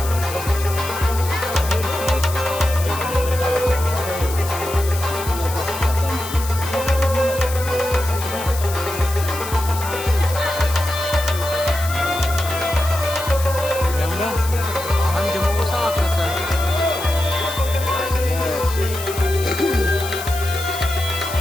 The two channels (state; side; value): noise; left; hiss, 10 dB below the sound